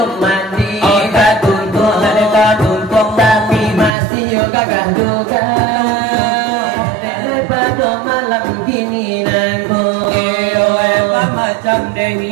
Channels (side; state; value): left; drops out; at 3.9 s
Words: mandi, oh tak tuntung, tapi masih yo gagah juga. Daripada malam gini nangku, apa macam